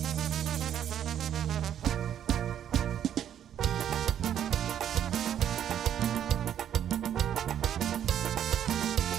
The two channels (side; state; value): left; quieter; 10.0 dB